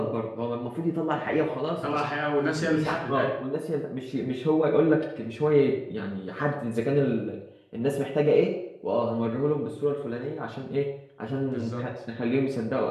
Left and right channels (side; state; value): both; identical; correlation 1.00